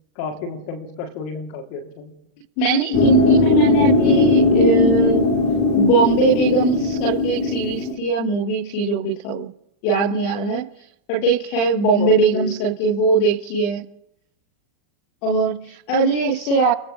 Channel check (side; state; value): right; late; 40 ms